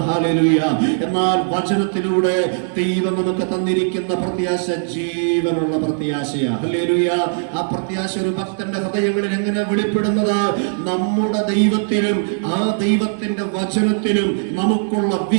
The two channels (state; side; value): silent; left; digital silence